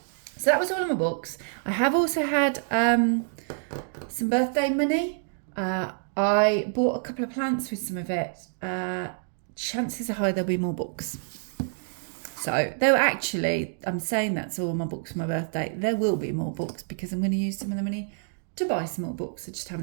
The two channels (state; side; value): silent; left; digital silence